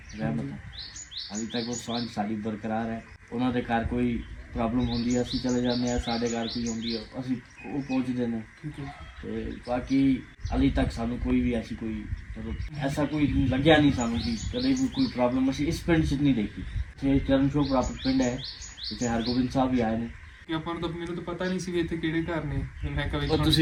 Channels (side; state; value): both; identical; correlation 1.00